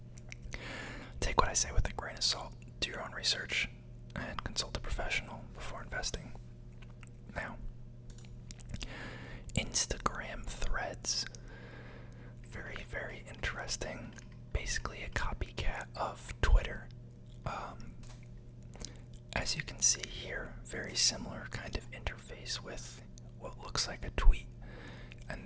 take what I say with a grain of salt. Do your own research and consult a professional before investing. Now, Instagram Threads. Very, very interesting. Basically a copycat of Twitter. As you can see here, very similar kind of interface with what looks like a tweet. And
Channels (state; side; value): identical; both; correlation 1.00